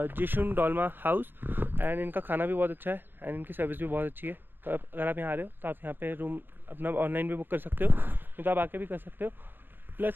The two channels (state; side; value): late; left; 0.097 ms